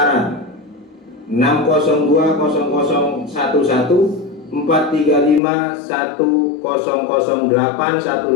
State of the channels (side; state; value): right; drops out; at 5.4 s